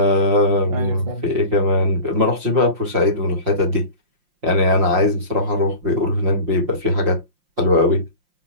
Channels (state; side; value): late; left; 5.7 ms